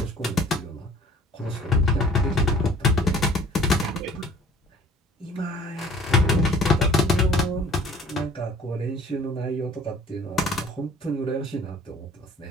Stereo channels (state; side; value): normal; both; correlation 0.51